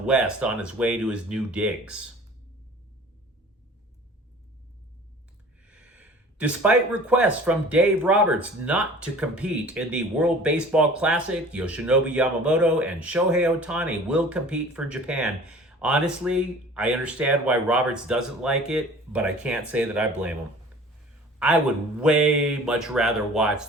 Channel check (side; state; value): both; normal; correlation 0.45